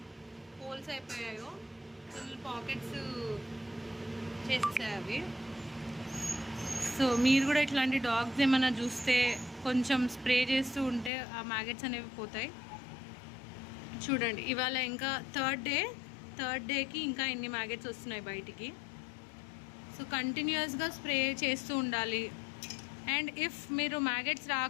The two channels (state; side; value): drops out; right; at 11.1 s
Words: హోల్స్ అయిపోయాయో, ఫుల్ పాకెట్స్ చేసేసాయి అవి. సో మీరు కూడా ఇట్లాంటి డాగ్స్ ఏమైనా చూస్తే కొంచెం స్ప్రే చేస్తూ ఉంటే ఆ మ్యాగెట్స్ అనేవి పోతాయి. చూడండి, ఇవాళ ఇంకా థర్డ్ డేకి ఇంకా ఎన్ని మ్యాగెట్స్ వస్తున్నాయి బయటికి. సో కంటిన్యూస్గా స్ప్రే చేస్తూ ఉండాలి. అండ్ ఇఫ్ మీరు మ్యాగెట్స్